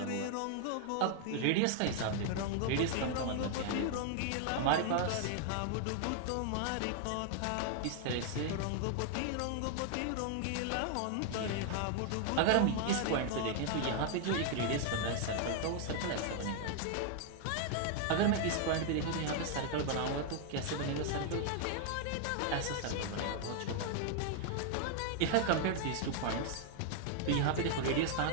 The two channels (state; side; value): different; both; correlation 0.00